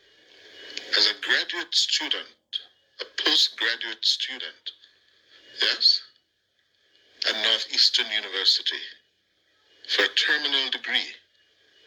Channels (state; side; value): identical; both; correlation 1.00